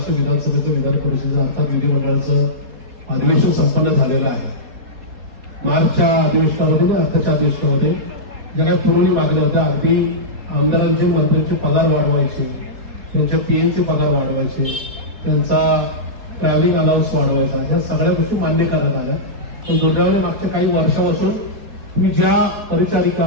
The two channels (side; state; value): left; late; 4.2 ms